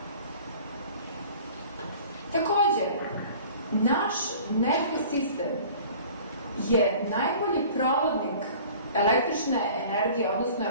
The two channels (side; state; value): both; inverted; correlation -0.46